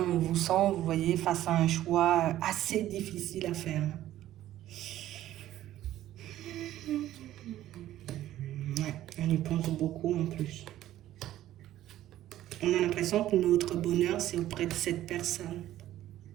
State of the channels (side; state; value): left; quieter; 13.5 dB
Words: vous sent, vous voyez, face à un choix assez difficile à faire. Ouais, on y pense beaucoup en plus. On a l'impression que notre bonheur, c'est auprès de cette personne.